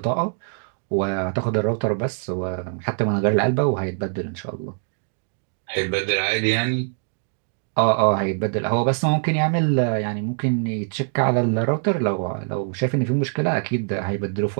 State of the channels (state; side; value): silent; left; 63 dB below the other